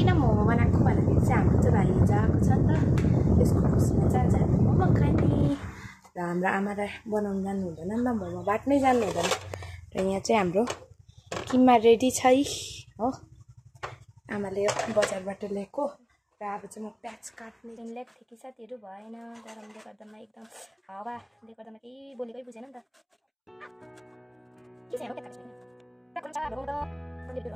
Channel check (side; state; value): both; identical; correlation 1.00